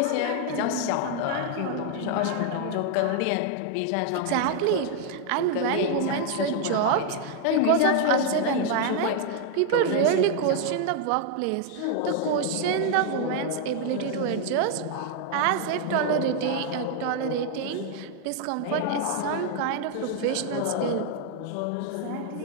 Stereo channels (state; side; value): different; both; correlation 0.00